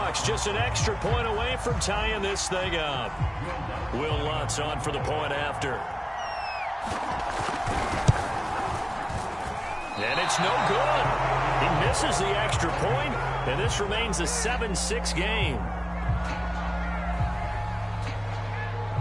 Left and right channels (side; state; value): both; identical; correlation 1.00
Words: just an extra point away from tying this thing up. Will Lutz on for the point after. And it's no good. He misses the extra point, and this remains a 7-6 game.